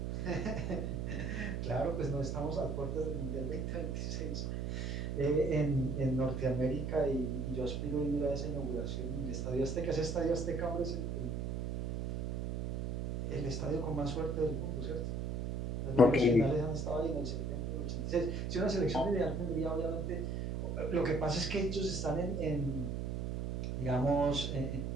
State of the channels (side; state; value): right; noise; hum, 2 dB below the sound